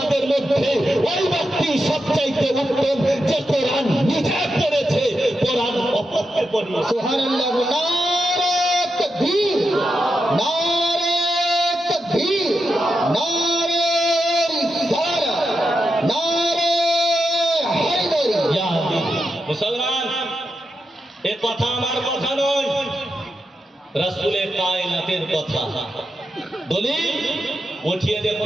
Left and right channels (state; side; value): normal; both; correlation 0.87